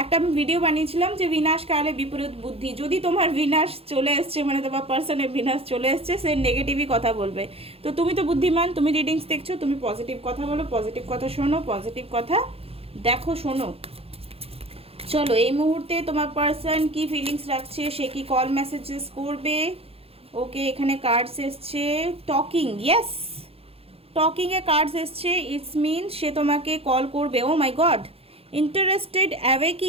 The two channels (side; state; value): left; late; 0.28 ms